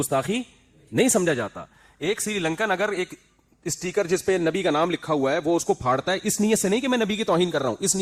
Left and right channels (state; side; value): identical; both; correlation 1.00